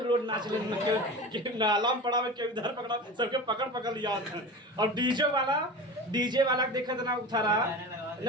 लोट नाचने लगे। नाला में पड़ा में क्यों इधर पकड़ा, सबके पकड़ पकड़ लिया। और डीजे वाला देखा था ना उठा रहा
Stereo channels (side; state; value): both; normal; correlation 0.31